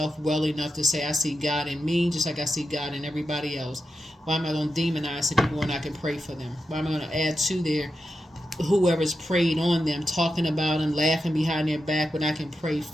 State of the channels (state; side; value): normal; both; correlation 0.89